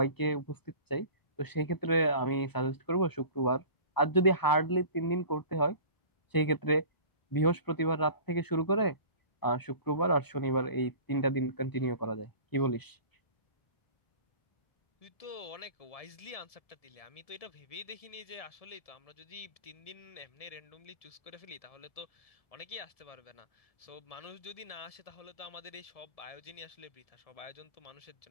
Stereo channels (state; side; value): late; right; 1.7 ms